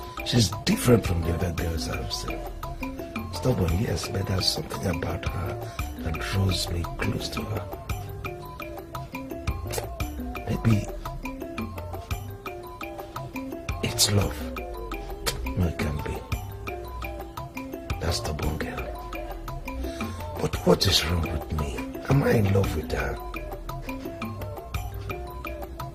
She's different from the other girls I've seen. Stubborn, yes, but there's something about her that draws me close to her. Maybe it's love. No, it can't be. That's stubborn girl. But what is wrong with me? Am I in love with her?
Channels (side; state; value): both; identical; correlation 1.00